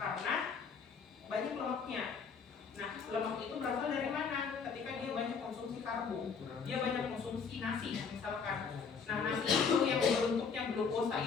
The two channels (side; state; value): right; quieter; 5.7 dB